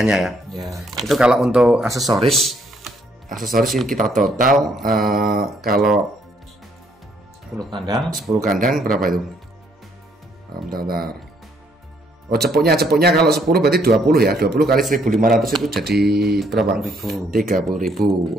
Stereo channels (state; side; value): normal; both; correlation 0.68